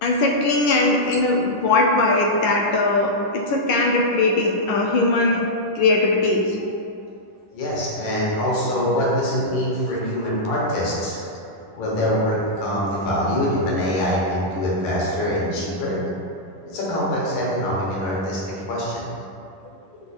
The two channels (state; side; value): late; right; 10 ms